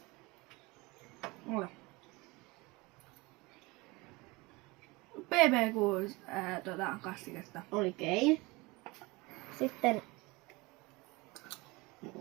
Ole. BB6 kastiketta. Oikein. Sitten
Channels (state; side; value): quieter; left; 24.1 dB